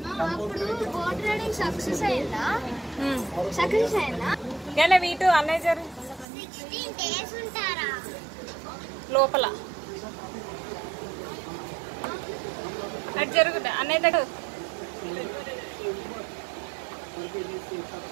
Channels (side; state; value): left; drops out; at 6.2 s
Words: అయిందా? వీటు అన్నయ్య లోపల అటు జరుగుతా అన్నయ్య దగ్గర.